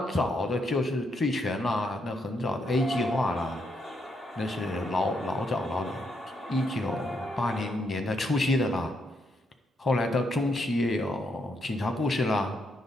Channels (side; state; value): both; normal; correlation 0.78